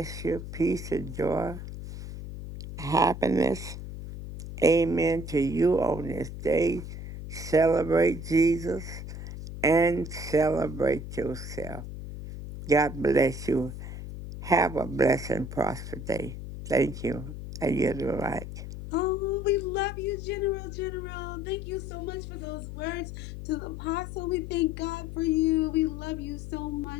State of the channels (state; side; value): noise; left; hum, 9 dB below the sound